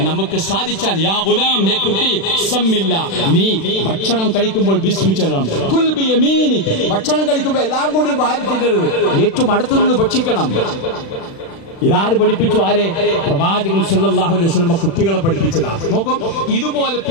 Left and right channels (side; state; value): right; late; 36 ms